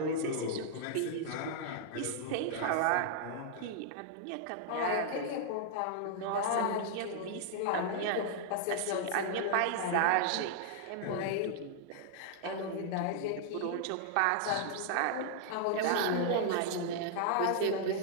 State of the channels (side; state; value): both; different; correlation -0.01